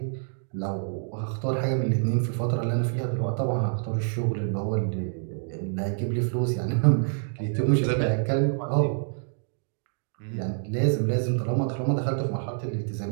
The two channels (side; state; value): left; silent; digital silence